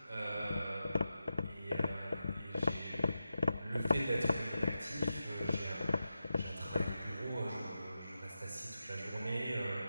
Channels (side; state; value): both; inverted; correlation -0.90